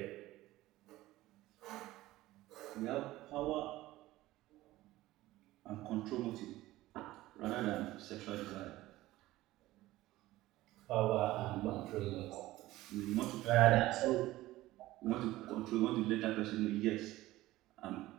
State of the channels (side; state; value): left; quieter; 16.9 dB